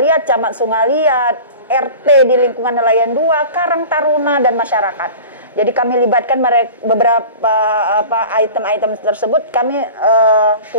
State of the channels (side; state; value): both; inverted; correlation -0.38